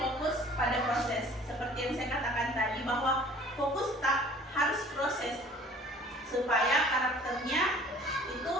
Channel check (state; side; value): normal; both; correlation 0.50